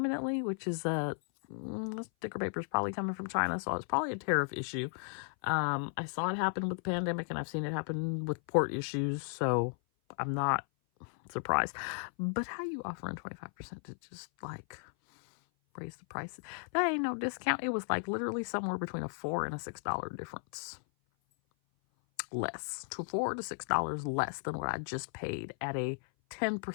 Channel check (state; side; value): silent; right; 54 dB below the other